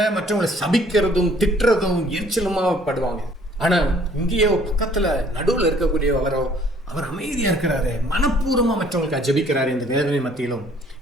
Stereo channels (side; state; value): both; normal; correlation 0.58